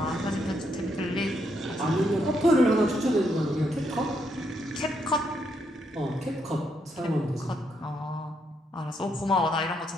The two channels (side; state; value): both; normal; correlation 0.77